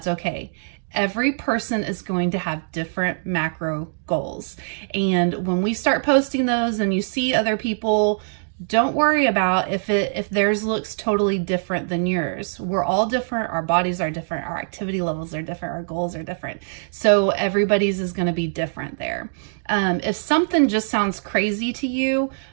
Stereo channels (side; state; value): left; silent; digital silence